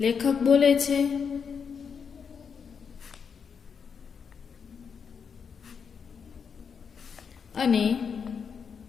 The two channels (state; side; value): quieter; right; 6.4 dB